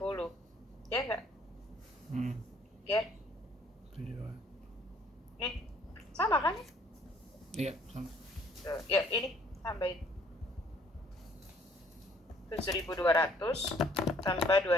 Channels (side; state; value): both; normal; correlation 0.61